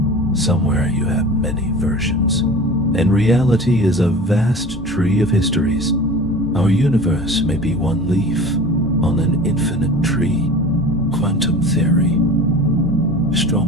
Somewhere you have many versions, and reality is a vast tree of histories. Our universe may be one leaf on an infinite tree. Quantum theory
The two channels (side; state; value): both; normal; correlation 0.38